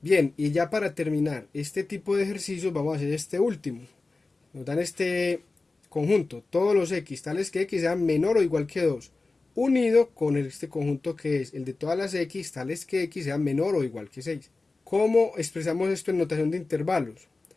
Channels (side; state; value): right; quieter; 3.5 dB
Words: Bien, y ya para terminar este tipo de ejercicios vamos a hacer este último. Nos dan este conjunto, todos los x tales que x sean menor o igual que 2, unido con este conjunto que es el de todas las x tales que x sean menor o igual que 6. ¿Cómo expresamos esto en notación de intervalos?